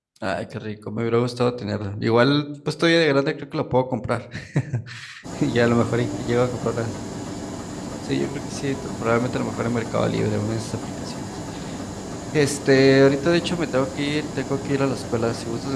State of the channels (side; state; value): both; identical; correlation 1.00